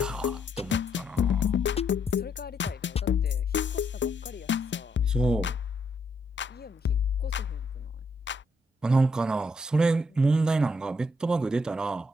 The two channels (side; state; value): both; normal; correlation 0.74